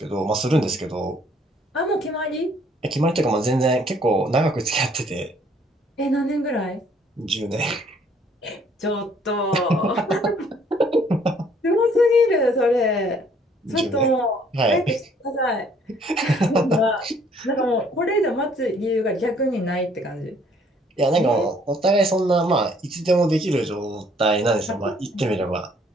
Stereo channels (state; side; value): normal; both; correlation 0.62